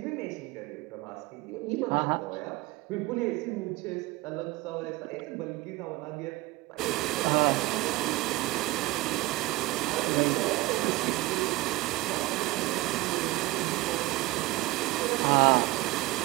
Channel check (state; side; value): quieter; left; 19.8 dB